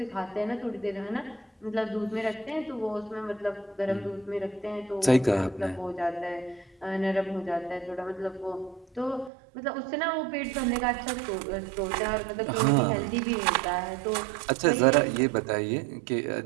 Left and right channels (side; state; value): left; drops out; at 9.3 s